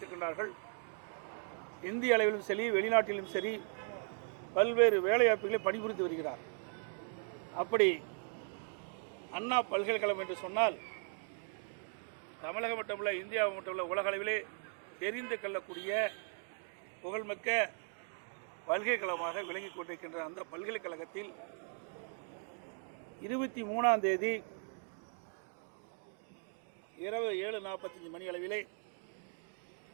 இந்திய அளவிலும் சரி, வெளிநாட்டிலும் சரி, பல்வேறு வேலைவாய்ப்புகளை பணிபுரிந்து வருகிறார். அப்படி அண்ணா பல்கலைக்கழகம் என்று சொன்னால் தமிழகம் மட்டுமல்ல, இந்தியா மட்டுமல்ல, உலக அளவிலே தெரிந்து கொள்ளக்கூடிய புகழ்மிக்க பல்கலைக்கழகமாக விளங்கிக் கொண்டிருக்கின்ற அந்த பல்கலைக்கழகத்தில் 23ஆம் தேதி இரவு 7:45 மணி அளவிலே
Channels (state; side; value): silent; left; 52 dB below the other